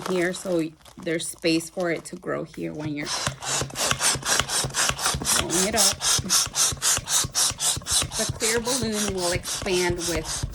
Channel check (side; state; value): both; identical; correlation 1.00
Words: here so there's space for it to grow here when you're blowing it up. The clear balloon will expand